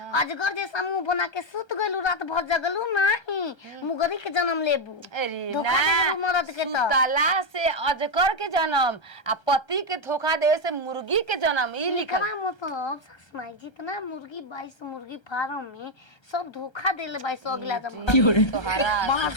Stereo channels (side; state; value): right; late; 1.3 ms